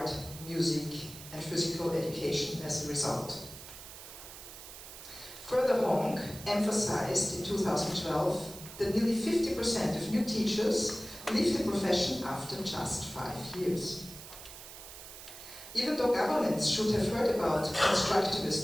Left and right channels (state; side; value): noise; right; hiss, 14 dB below the sound